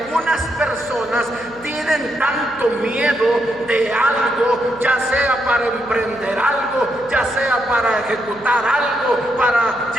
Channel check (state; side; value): noise; right; hum, 23 dB below the sound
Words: personas tienen tanto miedo de algo, ya sea para emprender algo, ya sea para ejecutar algo, para